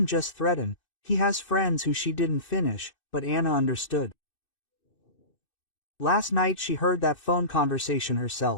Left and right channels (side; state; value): right; late; 2.6 ms